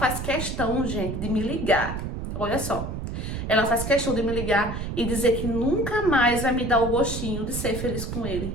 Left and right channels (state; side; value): noise; right; rumble, 5 dB below the sound